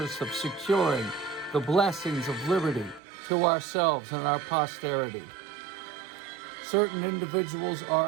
of securing the blessings of liberty to ourselves and our posterity. Certain individuals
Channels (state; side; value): drops out; left; at 3.0 s